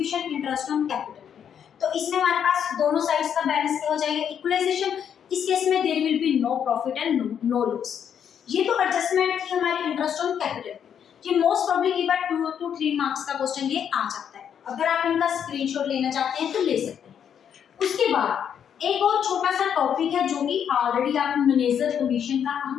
इंटरेस्ट ऑन कैपिटल। तो इसमें हमारे पास दोनों साइड्स का बैलेंस क्या हो जाएगा, इक्वलाइजेशन। इस केस में there will be no profit and no loss. ये तो एडजस्टमेंट थी हमारी इंटरेस्ट ऑन कैपिटल। ये मोस्ट प्रोबेबली एक बार 2 to 3 मार्क्स का क्वेश्चन ये आ जाता है, अगर आप इनका स्क्रीनशॉट लेना चाहते हैं तो ले सकते हैं। उसके बाद एक और छोटा सा टॉपिक है जो कि ऑलरेडी आप मैनेजर कमीशन का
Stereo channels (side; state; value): right; quieter; 8.4 dB